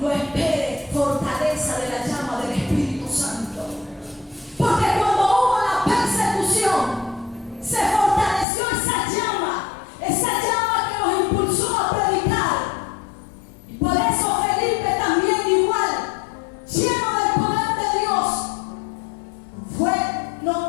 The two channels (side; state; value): right; drops out; at 8.5 s